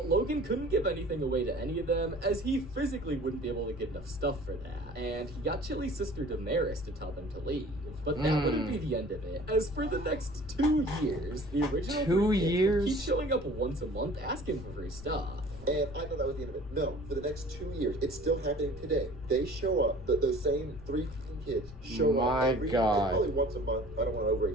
Logan couldn't give anything away to any of them, as he physically wouldn't be able to get enough stuff for that. And he got Chili's sister Damaris to tell them to leave. But that wouldn't be the end of it, as for the next 2 years, the original 2 3 kids would years? keep showing up once a month asking for free stuff. And I thought that was the end of it. No, for the next 2 years, it's still happening today. They show up, those same 3 kids show My up every God. probably once a month. I don't want to over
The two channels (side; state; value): left; noise; rumble, 16 dB below the sound